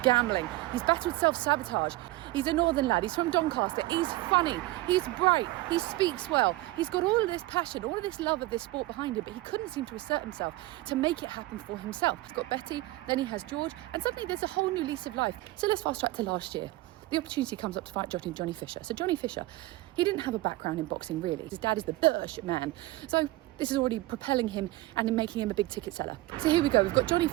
gambling, he's battled self-sabotage. He's a northern lad, he's from Doncaster, he's funny, he's bright, he speaks well, he's got all of this passion, all of this love of this sport behind him, but he couldn't seem to assert himself to make it happen for himself. He's got Betty, then he has George, and suddenly there's a whole new lease of life. So let's fast track to last year. The opportunity comes up to fight Johnny Fisher. So Johnny Fisher, he didn't have a background in boxing really. His dad is the Bush man. So this is already propelling him and making him a big ticket seller. So here we go. We've got Johnny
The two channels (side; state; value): left; quieter; 18.3 dB